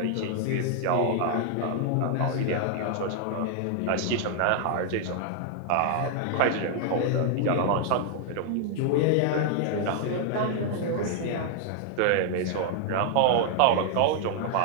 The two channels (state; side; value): different; both; correlation 0.00